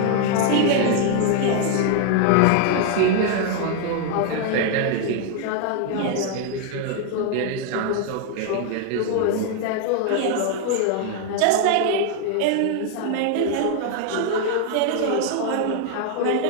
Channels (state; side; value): different; both; correlation 0.00